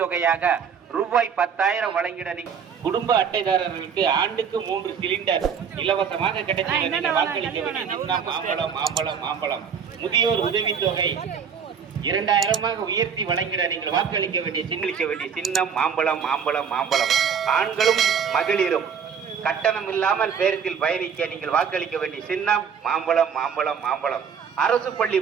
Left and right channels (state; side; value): quieter; left; 7.0 dB